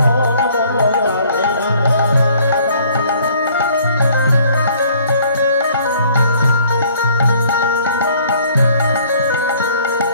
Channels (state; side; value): inverted; both; correlation -0.58